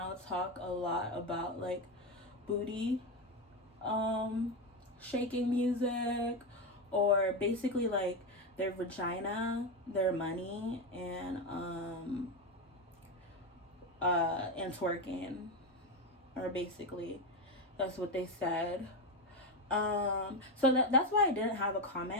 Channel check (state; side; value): normal; both; correlation 0.12